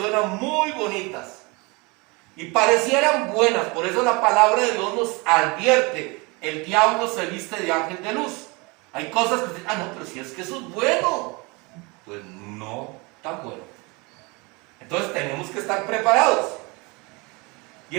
muy bonitas y parecieran buenas. Por eso la palabra de Dios nos advierte: el diablo se viste de ángel de luz. Hay cosas que dicen, no, pero si es que eso es bueno. Pues no tan bueno. Entonces tenemos que estar preparados. Y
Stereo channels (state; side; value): quieter; left; 27.2 dB